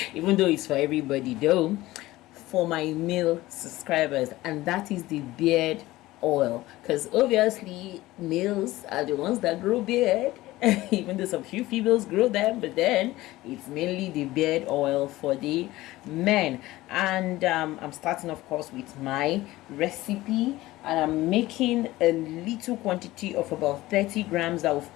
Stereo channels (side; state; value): right; quieter; 17.6 dB